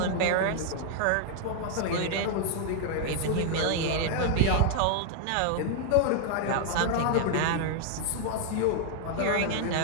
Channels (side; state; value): both; different; correlation 0.00